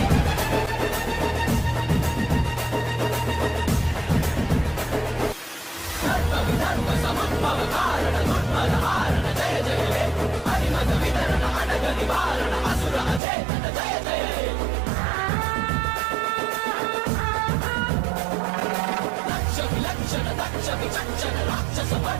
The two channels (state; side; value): drops out; left; at 13.2 s